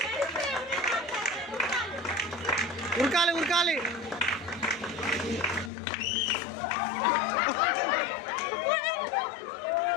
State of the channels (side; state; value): right; drops out; at 5.7 s